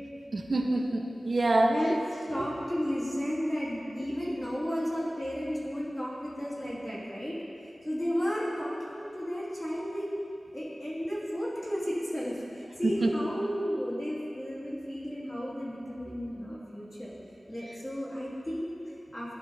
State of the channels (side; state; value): both; normal; correlation 0.97